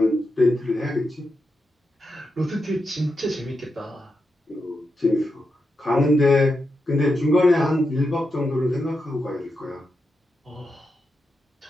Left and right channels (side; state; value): both; normal; correlation 0.86